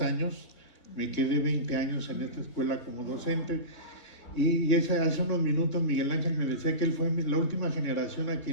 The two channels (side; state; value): right; late; 3.7 ms